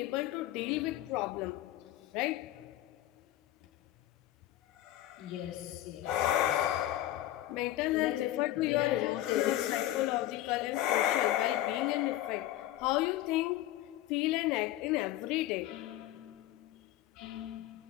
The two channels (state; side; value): quieter; right; 14.3 dB